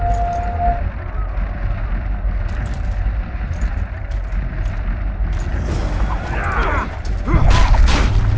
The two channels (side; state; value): both; identical; correlation 1.00